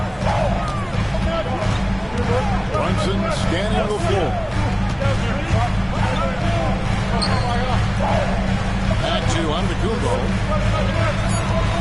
Brunson scanning the floor. Back to Antetokounmpo.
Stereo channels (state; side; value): identical; both; correlation 1.00